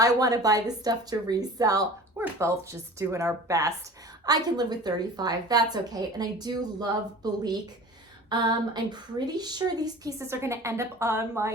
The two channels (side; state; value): both; normal; correlation 0.40